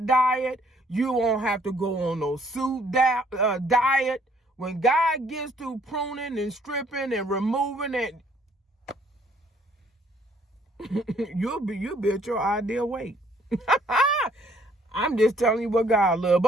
diet. You won't have to go on no soup diet. When God gets through pruning and stripping and removing it, you'll be at your ideal weight. I'm just telling you what God loves.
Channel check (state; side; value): normal; both; correlation 0.63